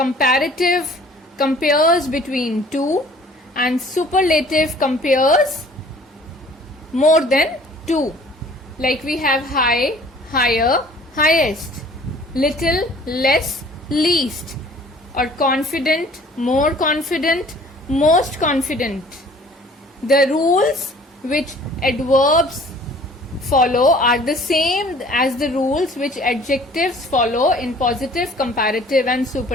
compares between two, and superlative compares more than two. Like we have high, higher, highest, little, less, least, or confident, more confident, most confident. The rules which adverbs follow are the same as the rules which adjectives follow in positive, comparative and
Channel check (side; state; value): both; normal; correlation 0.52